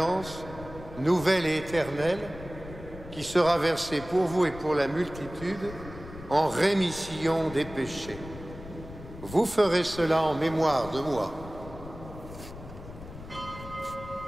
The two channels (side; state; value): left; noise; rumble, 14 dB below the sound